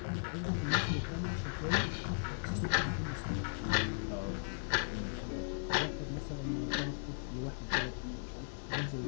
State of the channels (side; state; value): right; silent; digital silence